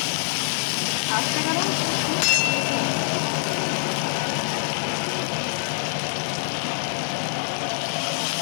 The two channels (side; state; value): right; silent; digital silence